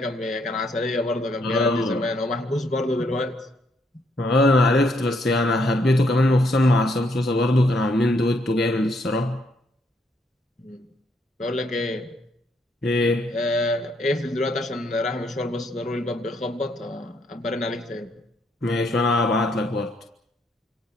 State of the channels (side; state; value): both; normal; correlation 0.72